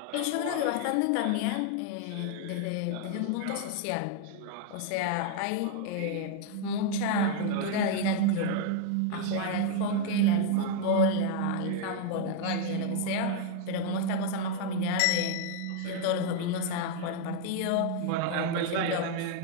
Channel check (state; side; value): different; both; correlation 0.00